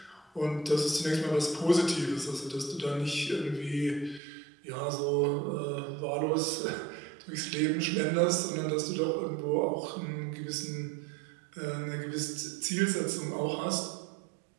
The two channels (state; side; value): drops out; left; at 4.2 s